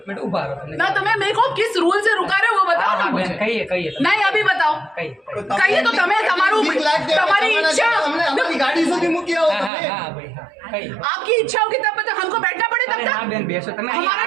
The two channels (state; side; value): drops out; left; at 9.7 s